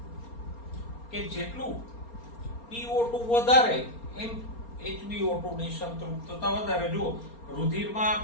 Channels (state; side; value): late; right; 4.3 ms